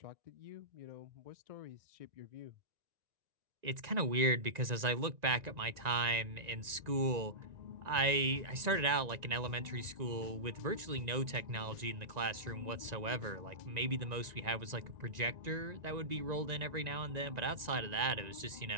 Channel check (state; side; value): late; left; 1.9 ms